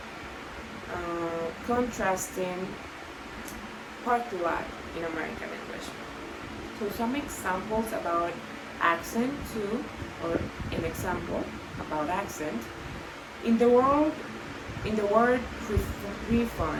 contrasting particular in American English. So some examples about accent too, or an example about accent. In the word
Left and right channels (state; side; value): identical; both; correlation 1.00